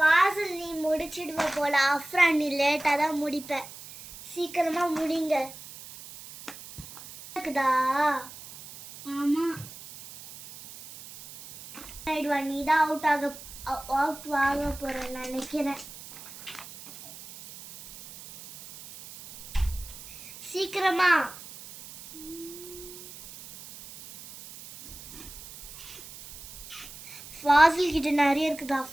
நீ முடிச்சிடுவ போல, அஃப்ரான் நீ லேட்டா தான் முடிப்ப. சீக்கிரமா முடிங்க. இருக்குதா? ஆமா. நீ தான் அவுட் ஆக போற நினைக்கிறேன். சீக்கிரமா. ஃபாசில் கிட்ட நிறைய இருக்குது,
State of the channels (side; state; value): right; noise; hiss, 15 dB below the sound